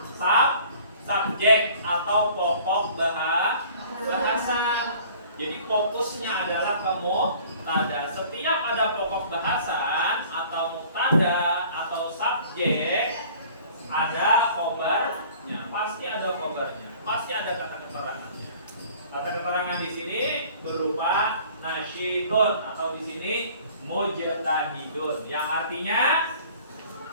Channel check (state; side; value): inverted; both; correlation -0.50